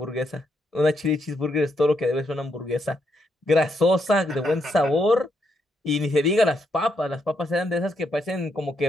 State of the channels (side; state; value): both; normal; correlation 0.78